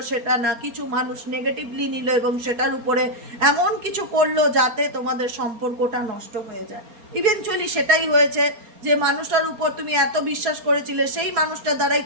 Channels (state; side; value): late; left; 4.3 ms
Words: সেটা না, কিছু মানুষ নেগেটিভলি নিল এবং সেটার উপরে এমন কিছু করলো যাতে তোমাদের সম্পর্কটা নষ্ট হয়ে যায়। ইভেনচুয়ালি সেটাই হয়েছে। যে মানুষটার উপর তুমি এত বিশ্বাস করেছিলে, সেই মানুষটার দ্বারাই